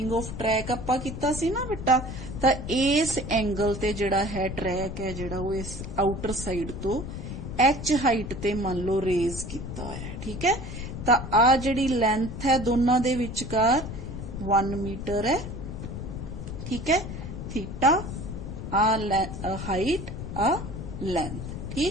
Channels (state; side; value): noise; left; rumble, 7 dB below the sound